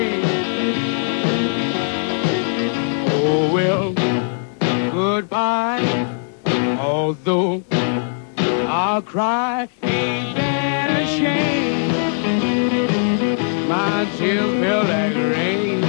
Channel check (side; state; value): right; silent; digital silence